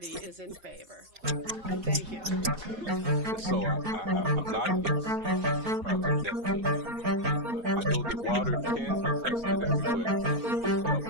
is in favor. Thank you. And so I'm not against Project Neptune. I know that water can be tested everywhere. Hell,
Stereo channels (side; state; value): left; late; 4.4 ms